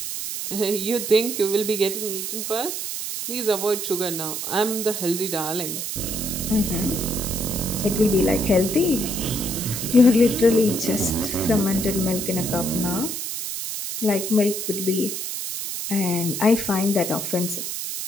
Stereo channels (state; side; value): noise; right; hiss, 4 dB below the sound